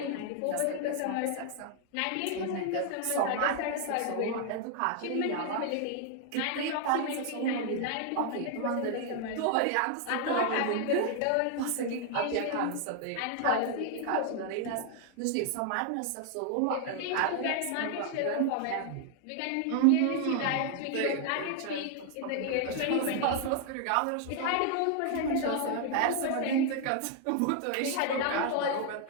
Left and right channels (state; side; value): different; both; correlation 0.00